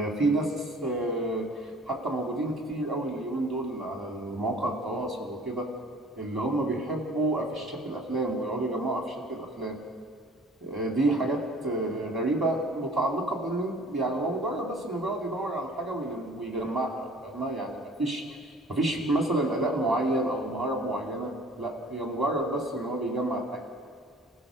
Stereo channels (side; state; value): both; normal; correlation 0.49